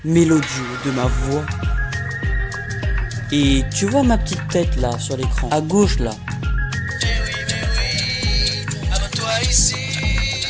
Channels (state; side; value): identical; both; correlation 1.00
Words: mélodieux de ma voix. Et tu vois ma petite tête là sur l'écran, à gauche là. Mais oui, abonne-toi ici.